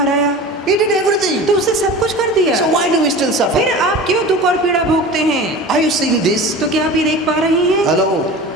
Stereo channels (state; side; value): normal; both; correlation 0.35